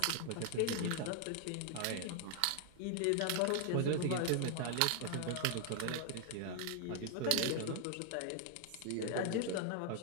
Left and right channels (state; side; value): different; both; correlation 0.00